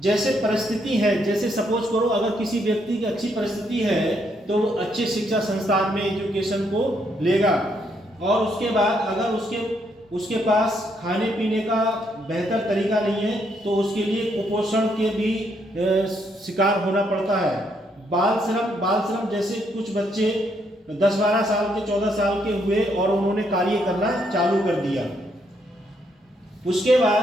जैसे परिस्थिति है, जैसे सपोज करो अगर किसी व्यक्ति की अच्छी परिस्थिति है तो वो अच्छे शिक्षा संस्थान में एजुकेशन को लेगा, और उसके बाद अगर उसके पास खाने पीने का बेहतर तरीका नहीं है तो उसके लिए कुपोषण के भी शिकार होना पड़ता है। बाल श्रम जैसे कुछ बच्चे 10-12 साल के 14 साल के हुए और उन्होंने कार्य करना चालू कर दिया। उसके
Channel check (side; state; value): both; normal; correlation 0.74